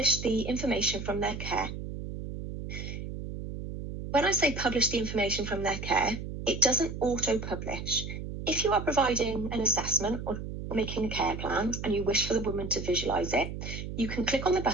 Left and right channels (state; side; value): noise; right; hum, 7 dB below the sound